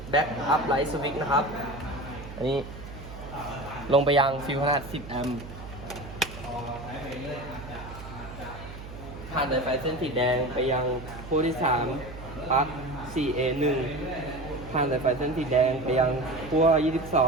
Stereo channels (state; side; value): noise; right; hum, 13 dB below the sound